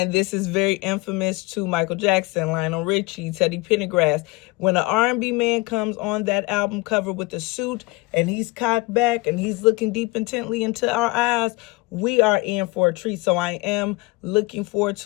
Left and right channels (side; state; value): right; quieter; 23.6 dB